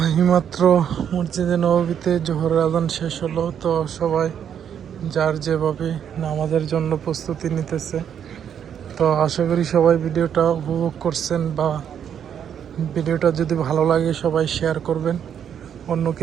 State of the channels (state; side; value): quieter; left; 8.7 dB